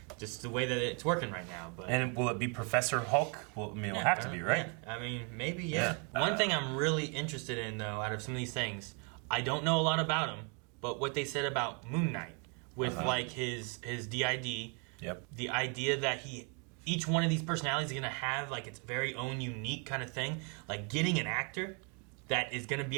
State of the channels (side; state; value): left; quieter; 36.5 dB